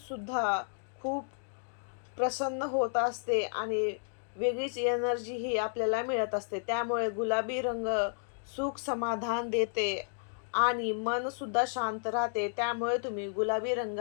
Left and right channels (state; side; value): silent; right; digital silence